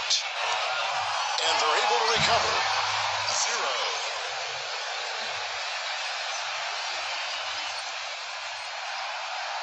And they're able to recover. 0.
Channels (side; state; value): both; identical; correlation 1.00